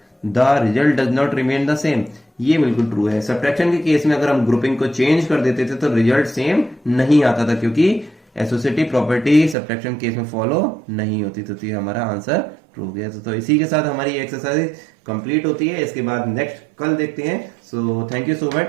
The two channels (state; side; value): drops out; left; at 9.6 s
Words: the result does not remain the same, ये बिल्कुल ट्रू है। सब्ट्रैक्शन के केस में अगर हम ग्रुपिंग को चेंज कर देते थे तो रिजल्ट सेम नहीं आता था, क्योंकि एसोसिएटिव प्रॉपर्टी सब्ट्रैक्शन केस में फॉलो नहीं होती, तो ये हमारा आंसर ट्रू गया। तो इसी के साथ हमारी एक्सरसाइज कंप्लीट होती है। इसके बाद नेक्स्ट कल देखते हैं। So thank you so